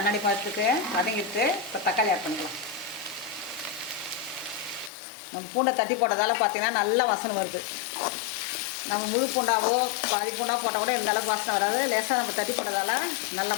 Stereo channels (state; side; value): drops out; right; at 4.9 s